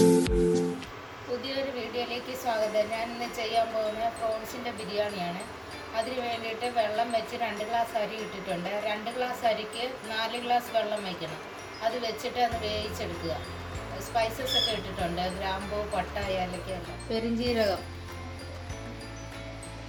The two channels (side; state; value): both; identical; correlation 1.00